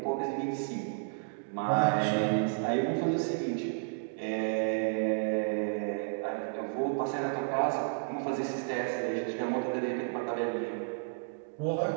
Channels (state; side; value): silent; left; digital silence